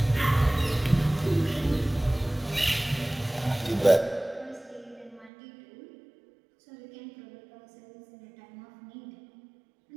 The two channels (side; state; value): left; drops out; at 5.3 s